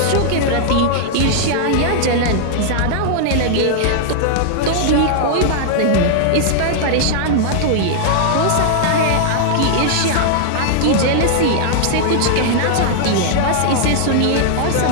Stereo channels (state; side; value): different; both; correlation -0.01